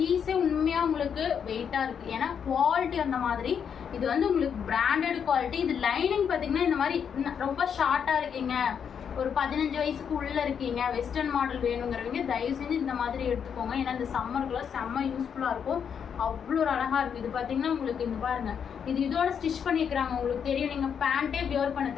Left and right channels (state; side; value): quieter; right; 7.5 dB